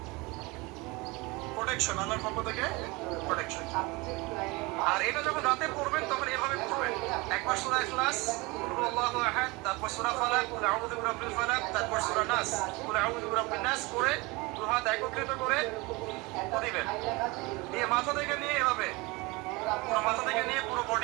প্রোটেকশন, আল্লাহর পক্ষ থেকে প্রোটেকশন। আর এটা যখন রাতে পড়বেন তখন এভাবে পড়বেন। একবার সূরা ইখলাস, কুল আল্লাহু আহাদ, তারপর সূরা ফালাক, কুল আউযু বিরাব্বিল ফালাক, তারপর সূরা নাস, কুল আউযু বিরাব্বিন নাস করে দুই হাত একত্রিত করে দিবেন। দিয়ে মাথা থেকে নিয়ে এভাবে, পুরো মাথা থেকে নিয়ে পুরো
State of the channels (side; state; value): left; quieter; 24.6 dB